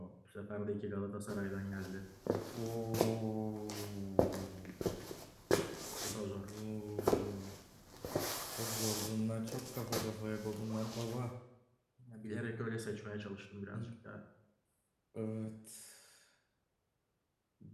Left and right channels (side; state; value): both; identical; correlation 1.00